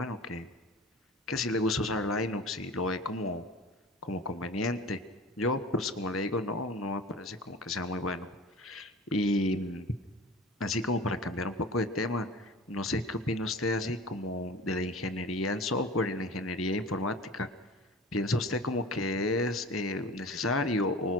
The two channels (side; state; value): both; normal; correlation 0.38